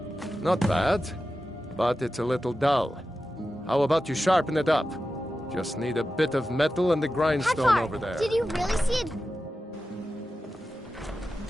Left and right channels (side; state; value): both; normal; correlation 0.92